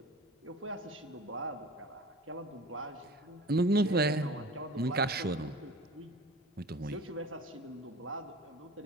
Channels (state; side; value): normal; both; correlation 0.39